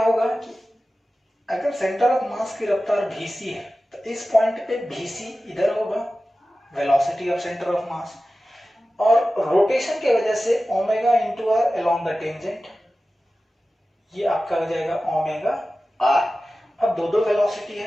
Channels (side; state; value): both; normal; correlation 0.95